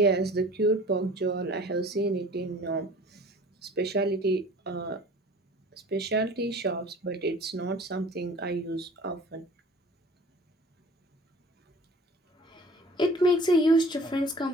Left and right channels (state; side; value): normal; both; correlation 0.46